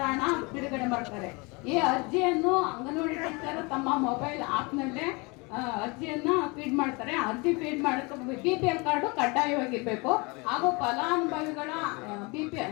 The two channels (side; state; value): right; quieter; 27.9 dB